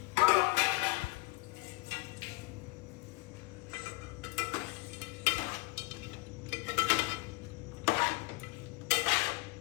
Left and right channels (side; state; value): right; quieter; 23.9 dB